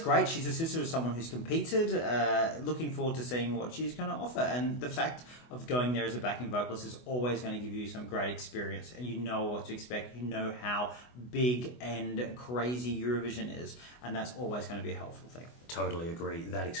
She's a sister of someone who's competed. Looking forward to seeing what she's going to offer. And the fact of going there as a backing vocalist is always going to give you some great experience. And you know what to expect. You know how big and crazy Eurovision is. And that's always going to be a helpful thing. Totally agree. That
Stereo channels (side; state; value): right; late; 24 ms